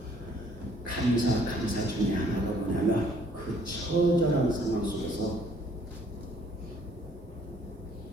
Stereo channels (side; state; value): both; normal; correlation 0.62